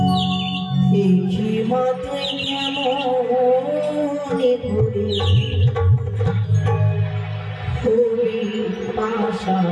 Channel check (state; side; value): identical; both; correlation 1.00